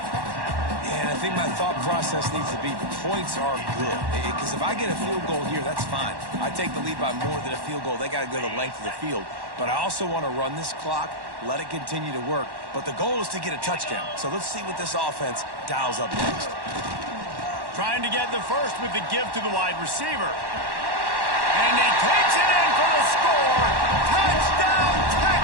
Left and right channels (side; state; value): left; late; 1.1 ms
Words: And I think my thought process needs to be points are good. Because if I get a field goal here, that's fine. I take the lead by more than a field goal. They got to go the length of the field. But I also want to run this clock, let it continue to work. But the goal is to get a touchdown. So let's see what this offense dials up next. Trying to get the first with the give to the wide receiver. And he takes it in for the score. Touchdown,